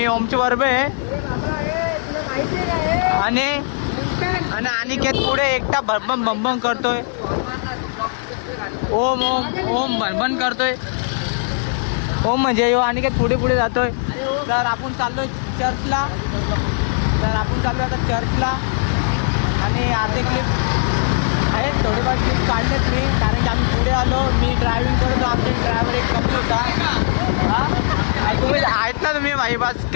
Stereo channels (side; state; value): right; silent; 66 dB below the other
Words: ओमची बरोबर आहे आणि अनिकेत पुढे एकटा भरभम भंभम करतोय. ओम ओम ओम भनभन करतोय. ओम म्हणजे यो अनिकेत पुढे पुढे जातोय. तर आपण चाललोय चर्चला. आता चर्चला आणि अर्धे क्लिप आहेत, थोडेफार क्लिप काढलेत मी, कारण की आम्ही पुढे आलो. मी ड्रायव्हिंग करतो, आमचे ड्रायव्हर एक कमी होता. तुम्ही आहेत ना तुम्ही भाई बस